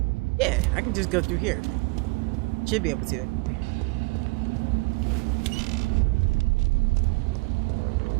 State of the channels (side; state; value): left; quieter; 27.1 dB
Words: Yeah, I can just go through here. Should be able to.